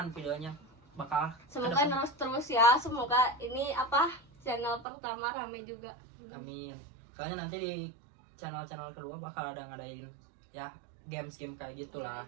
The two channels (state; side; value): drops out; left; at 4.9 s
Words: videonya, bakal Semoga kedepan. terus ya. Semoga ini channel pertama rame juga. Amin. Soalnya nanti di channel-channel kedua bakal ada ngadain ya games-game kayak gitulah,